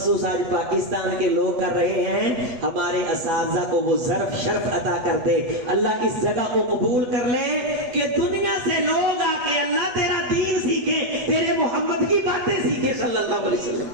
آج پاکستان کے لوگ کر رہے ہیں، ہمارے اساتذہ کو وہ ظرف شرف عطا کر دے، اللہ اس جگہ کو قبول کر لے کہ دنیا سے لوگ آ کے اللہ تیرا دین سیکھے، تیرے محمد کی باتیں سیکھے صلی اللہ علیہ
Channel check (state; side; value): late; left; 8.0 ms